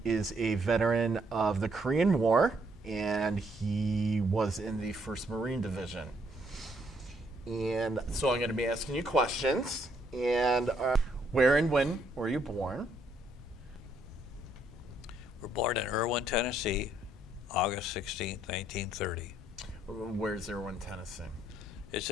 is a veteran of the Korean War, and he was in the 1st Marine Division. And so I'm going to be asking you questions. And where and when were you born? We're born in Irwin, Tennessee, August 16th, 1930. Where's Irwin, Tennessee? It's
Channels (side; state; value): both; normal; correlation 0.70